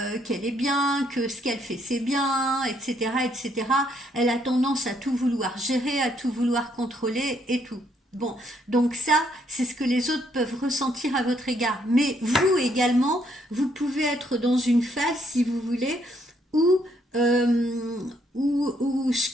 est bien, que ce qu'elle fait c'est bien, etc., etc. Elle a tendance à tout vouloir gérer, à tout vouloir contrôler et tout. Bon, donc ça, c'est ce que les autres peuvent ressentir à votre égard. Mais vous également, vous pouvez être dans une phase, si vous voulez, où ce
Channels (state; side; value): normal; both; correlation 0.71